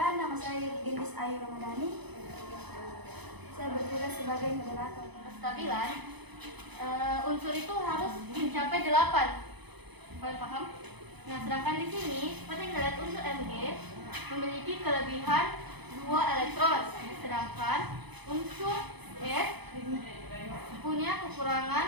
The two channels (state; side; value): late; left; 0.99 ms